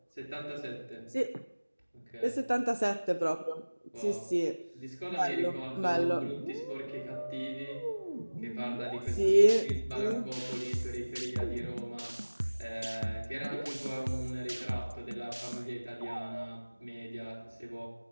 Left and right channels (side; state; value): both; inverted; correlation -1.00